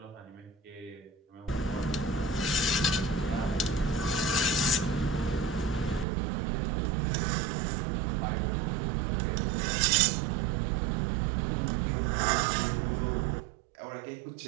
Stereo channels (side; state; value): left; drops out; at 6.1 s